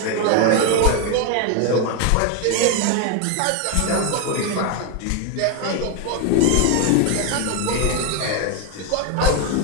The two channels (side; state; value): both; different; correlation 0.01